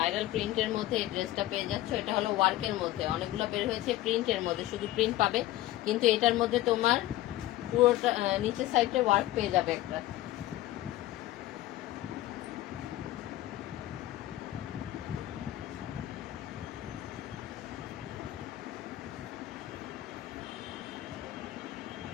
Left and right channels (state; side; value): quieter; right; 15.4 dB